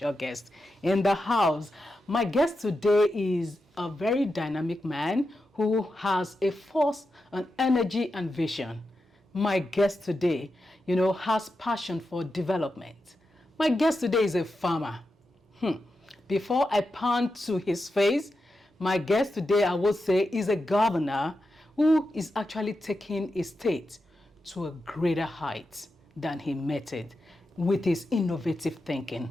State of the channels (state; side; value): normal; both; correlation 0.89